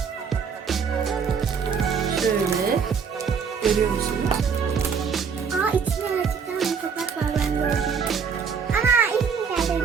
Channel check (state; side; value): quieter; left; 6.3 dB